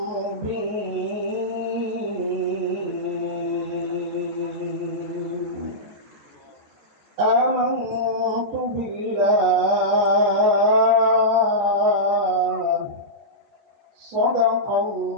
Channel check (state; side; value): late; left; 14 ms